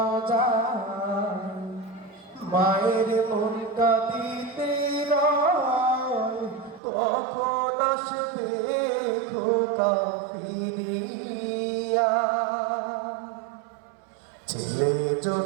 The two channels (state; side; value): drops out; left; at 6.8 s